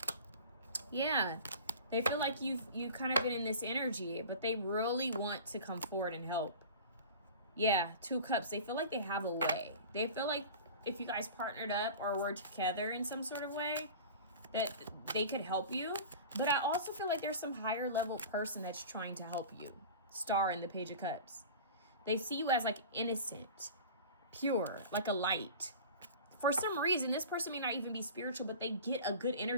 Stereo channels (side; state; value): both; inverted; correlation -0.37